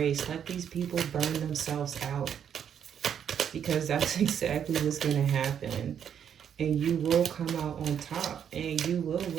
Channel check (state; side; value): quieter; left; 8.5 dB